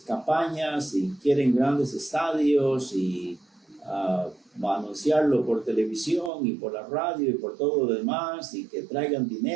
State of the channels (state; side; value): drops out; left; at 6.3 s